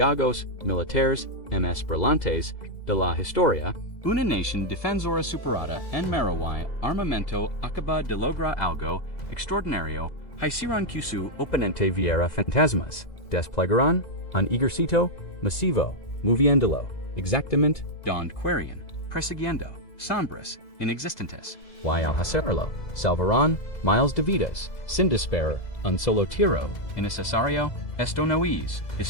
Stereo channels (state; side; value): late; right; 2.0 ms